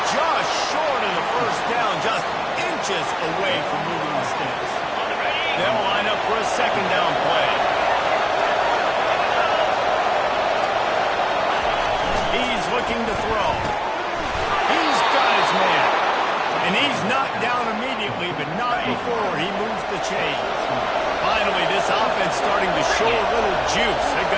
just short of the first down, just inches away from moving the sticks. They'll line up for a second down play. He's looking to throw. He's got his man. And he's knocked down immediately, but not before he moves the chains. Finally, this offense starting to show a little juice. They've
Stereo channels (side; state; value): both; identical; correlation 1.00